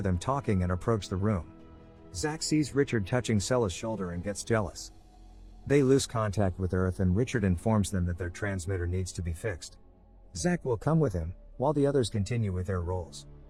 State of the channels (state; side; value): identical; both; correlation 1.00